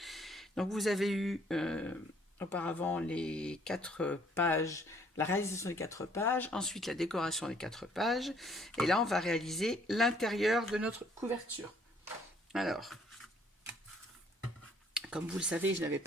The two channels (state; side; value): normal; both; correlation 0.63